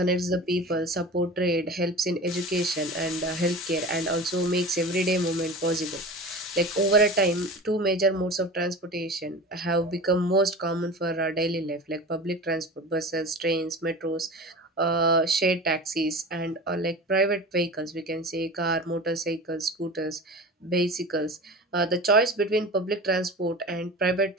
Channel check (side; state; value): both; normal; correlation 0.33